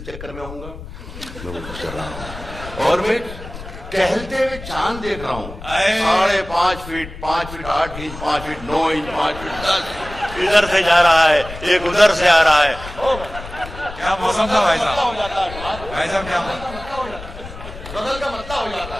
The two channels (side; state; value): left; noise; rumble, 13 dB below the sound